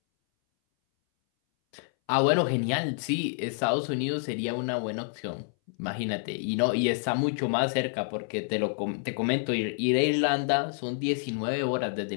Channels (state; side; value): silent; right; 59 dB below the other